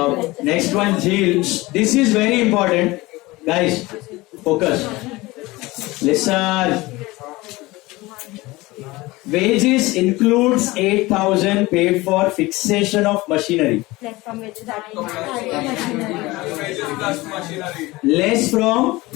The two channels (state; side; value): quieter; right; 20.8 dB